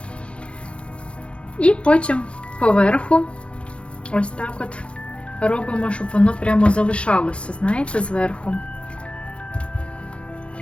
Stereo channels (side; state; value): right; late; 0.059 ms